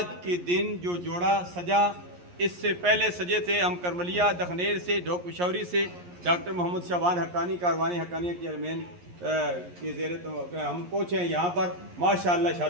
کے دن جو جوڑا سجا، اس سے پہلے سجے تھے ہم کرملیا دخنیر سے، ڈھوک پشاوری سے، ڈاکٹر محمد شعبان حقانی کاروان حقانیہ کے چیئرمین کے زیر ہم پہنچے ہیں یہاں پر ماشاءاللہ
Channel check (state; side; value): late; left; 11 ms